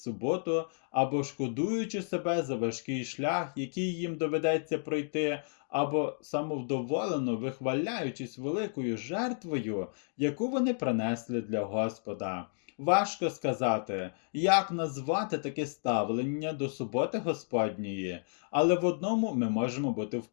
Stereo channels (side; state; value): right; silent; digital silence